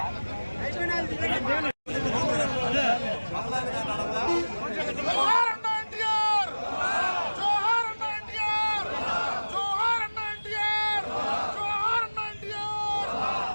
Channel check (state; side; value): inverted; both; correlation -1.00